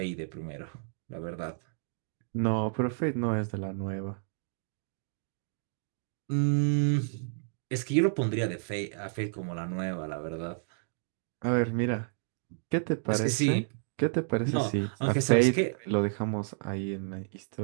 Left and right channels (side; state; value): left; silent; digital silence